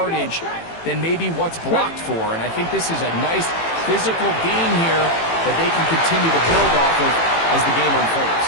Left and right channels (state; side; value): late; right; 18 ms